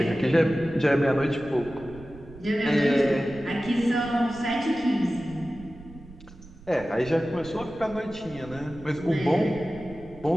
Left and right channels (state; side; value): noise; right; rumble, 19 dB below the sound